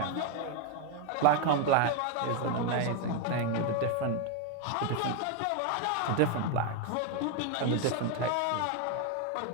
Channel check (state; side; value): different; both; correlation 0.01